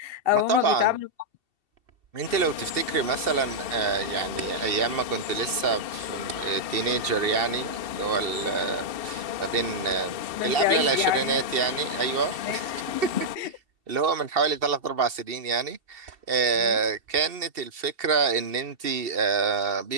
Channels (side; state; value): left; late; 2.7 ms